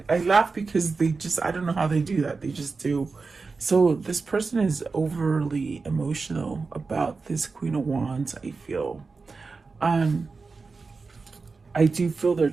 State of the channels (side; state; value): left; quieter; 4.3 dB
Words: I laugh because I don't know how they do that. They just do. So this person is overly emotional about this Queen of Wands, I feel. I do feel they're